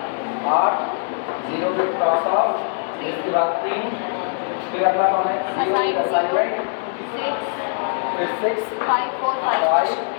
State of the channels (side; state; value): right; silent; digital silence